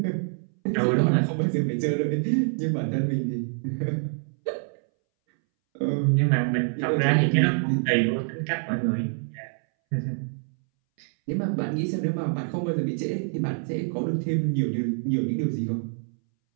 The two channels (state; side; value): silent; left; 61 dB below the other